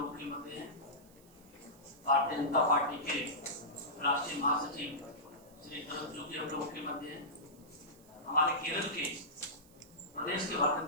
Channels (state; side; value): noise; right; hiss, 26 dB below the sound